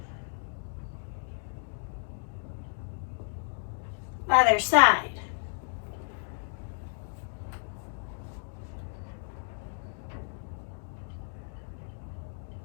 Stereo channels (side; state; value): right; silent; digital silence